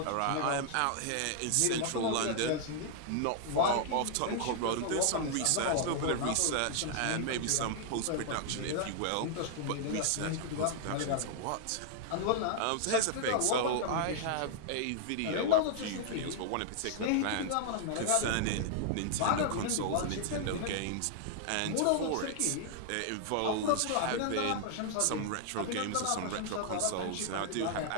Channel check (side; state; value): both; different; correlation -0.01